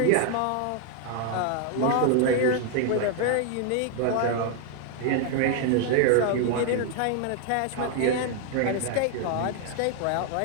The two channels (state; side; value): different; both; correlation 0.00